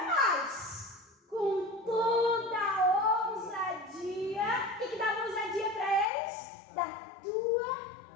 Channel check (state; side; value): drops out; right; at 6.1 s